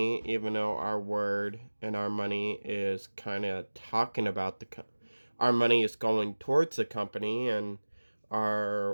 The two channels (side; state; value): both; inverted; correlation -1.00